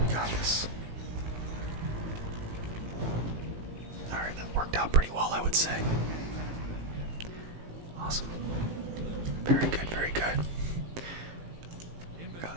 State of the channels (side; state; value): left; late; 18 ms